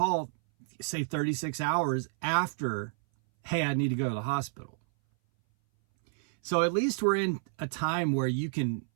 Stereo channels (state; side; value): silent; left; 58 dB below the other